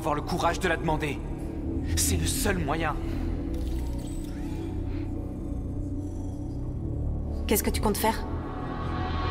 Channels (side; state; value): both; identical; correlation 1.00